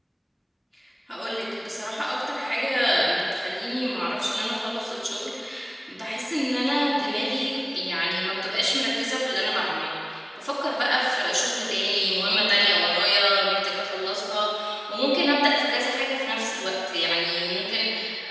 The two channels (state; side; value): identical; both; correlation 1.00